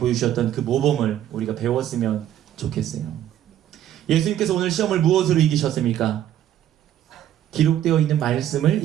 그 모범을 우리가 배웠으면 좋겠어요. 예수님께서 오늘 시험을 무엇으로 이기셨습니까? 기록되어 있는 말씀을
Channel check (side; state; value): left; quieter; 11.6 dB